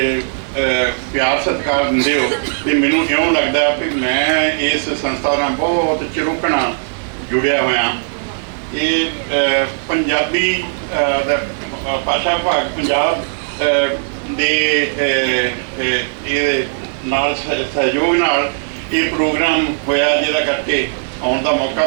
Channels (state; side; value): silent; left; 68 dB below the other